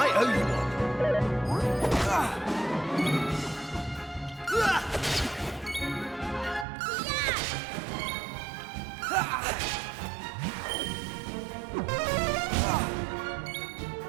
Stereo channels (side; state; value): left; drops out; at 6.7 s